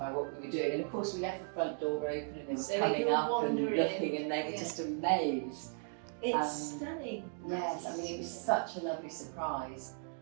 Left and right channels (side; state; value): left; silent; 54 dB below the other